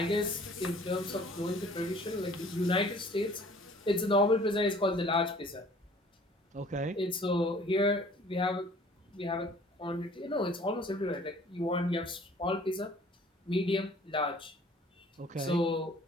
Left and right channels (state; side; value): normal; both; correlation 0.52